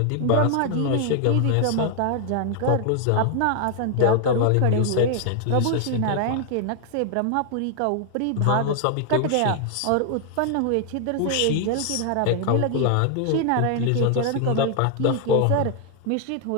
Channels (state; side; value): different; both; correlation 0.00